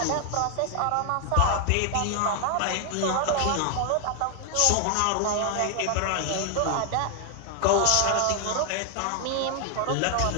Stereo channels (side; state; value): both; different; correlation 0.00